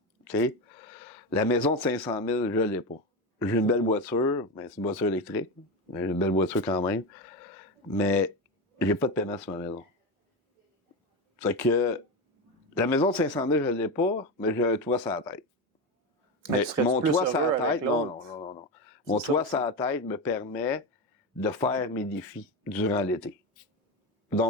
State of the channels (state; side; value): normal; both; correlation 0.17